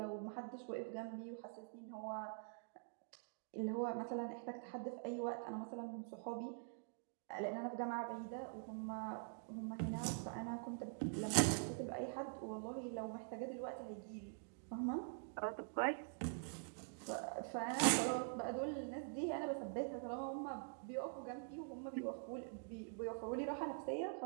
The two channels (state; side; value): silent; left; digital silence